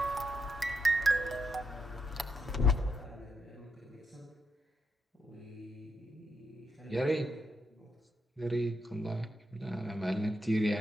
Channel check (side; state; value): both; normal; correlation 0.82